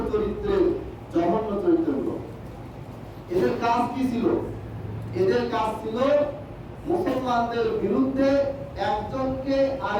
চরিত্রের, জঘন্য চরিত্রের লোক। এদের কাজ কি ছিল? এদের কাজ ছিল মুসলমানদের বিরুদ্ধে একজনকে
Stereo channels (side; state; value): both; identical; correlation 1.00